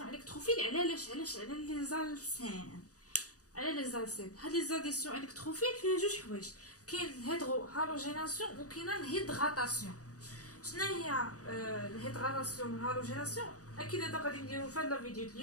électrophiles, على لي زالسين. هاد لي زاديسيون الكتروفيل فيها جوج حوايج. كاين الهيدرو هالوجيناسيون وكاين الهيدغاتاسيون. شنو هي الهيدغاتاسيون والهالوجيناسيون؟ اكيد هذا غادي نديرو في هاد الفيديو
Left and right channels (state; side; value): late; right; 0.67 ms